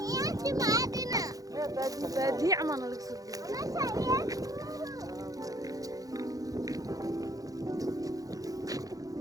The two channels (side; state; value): left; late; 0.17 ms